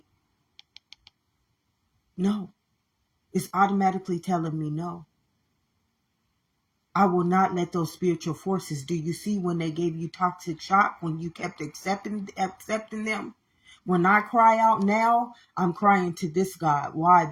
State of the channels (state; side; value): identical; both; correlation 1.00